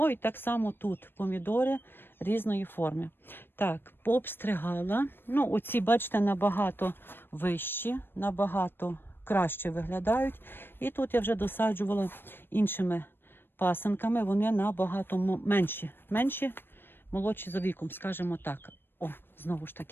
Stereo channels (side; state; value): right; late; 0.099 ms